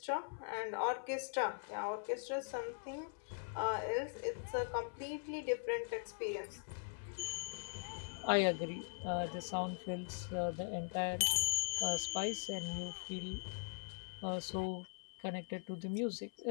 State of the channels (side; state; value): right; silent; 50 dB below the other